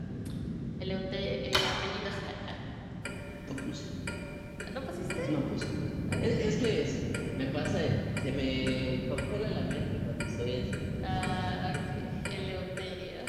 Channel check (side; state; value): both; identical; correlation 1.00